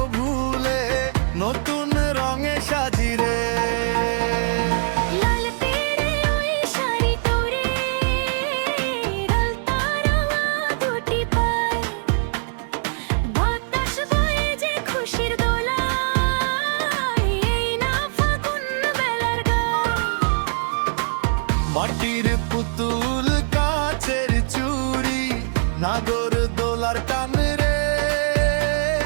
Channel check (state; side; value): silent; left; 64 dB below the other